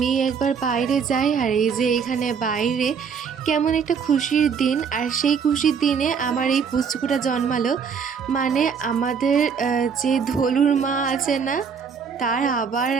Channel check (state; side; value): quieter; left; 6.4 dB